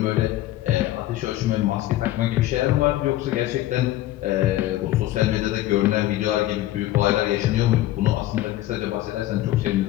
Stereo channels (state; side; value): quieter; right; 15.1 dB